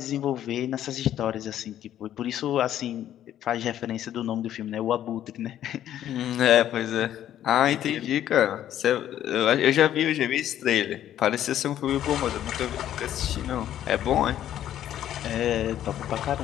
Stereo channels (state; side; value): quieter; right; 11.4 dB